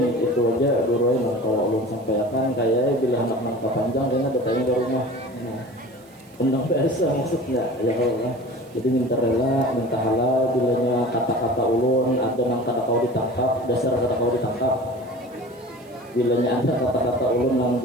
itu aja Guru yang kalau ulun sampaikan, kayak bila anak-anak panjang kayaknya bertanya ke rumah. Undang biasa maksudnya ya Allah. Jadi minta rela, minta halal bilanya kata-kata ulun ada nang kada kau ditangkap, dasar kada kau ditangkap. bilanya ada kata-kata ulun yang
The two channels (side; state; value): right; noise; hiss, 29 dB below the sound